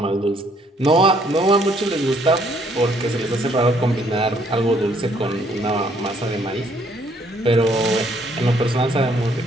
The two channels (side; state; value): both; normal; correlation 0.66